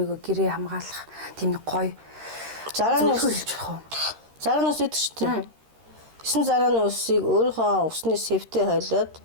гэрээ хамгаалах тийм нэг гоё зарааны хэлж болох уу? Зарааны ус гэдэг шүү дээ. 9 зарааны усыг өөрийнхөө усны сэвтээ хойлоод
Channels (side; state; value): left; late; 13 ms